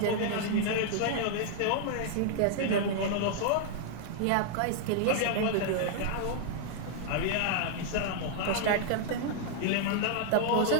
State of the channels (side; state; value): both; different; correlation -0.01